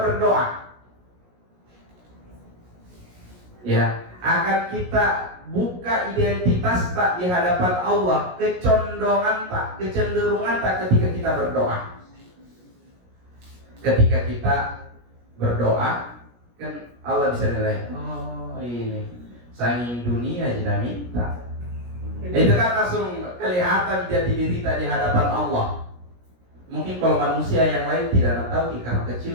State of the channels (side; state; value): left; late; 17 ms